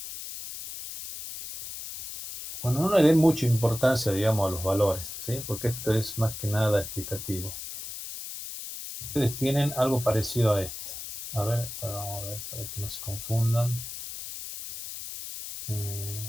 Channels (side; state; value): left; noise; hiss, 9 dB below the sound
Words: Bueno, no le den mucha importancia, digamos, a los valores, ¿sí? Porque esto es más que nada explicativo. Ustedes tienen algo parecido a esto. A ver, vamos a ver, para que no se confundan.